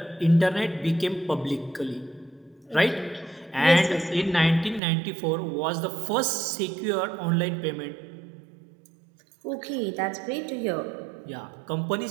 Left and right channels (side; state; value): left; drops out; at 4.8 s